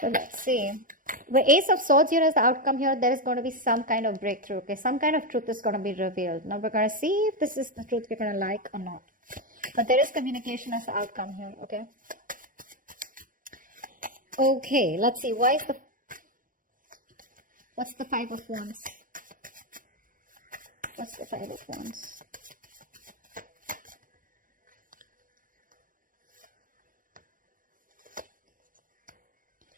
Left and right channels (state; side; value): late; left; 0.40 ms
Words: let's see. The Ace of Swords here is the outcome here. There is going to be some kind of breakthrough, okay? Some kind of truth is going to be revealed. Now we're going to see if this is the truth you're going to like or not. But there is communication as the outcome here, okay? Okay, let's see. What's the Five of Wands? What's the Five of Wands?